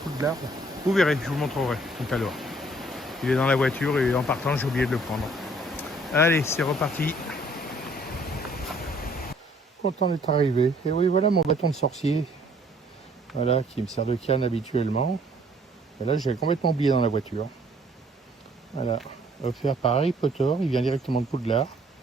Vous verrez, je vous montrerai tout à l'heure. Il est dans la voiture et en partant, j'ai oublié de le prendre. Allez, c'est reparti. Content d'être arrivé. Et oui, voilà mon bâton de sorcier. Voilà, qui me sert de canne habituellement. Et là, j'ai complètement oublié dans la voiture. Voilà, offert par Harry Potter. Il vient directement de Poudlard.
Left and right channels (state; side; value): normal; both; correlation 0.61